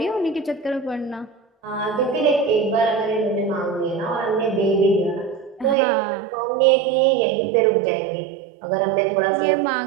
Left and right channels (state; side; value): drops out; left; at 5.8 s